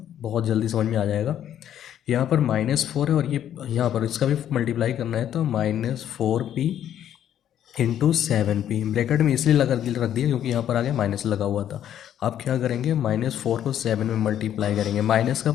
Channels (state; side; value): quieter; right; 10.5 dB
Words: बहुत जल्दी समझ में आ जाएगा। यहाँ पर -4 है और ये यहाँ पर इसका भी मल्टीप्लाई करना है तो -4p इंटू 7p। ब्रैकेट में इसलिए रख दिया क्योंकि यहाँ पर आगे माइनस लगा हुआ था। आप क्या करेंगे, -4 को 7 में मल्टीप्लाई करेंगे, माइनस का